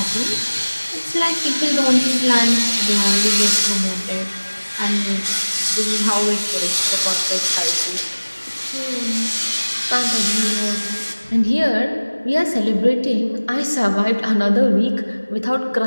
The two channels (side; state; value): both; inverted; correlation -1.00